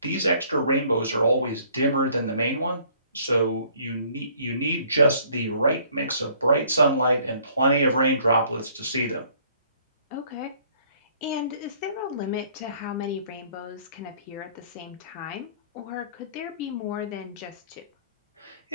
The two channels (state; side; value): inverted; both; correlation -0.59